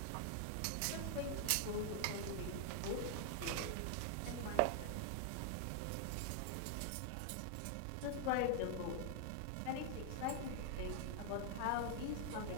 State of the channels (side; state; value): both; different; correlation 0.00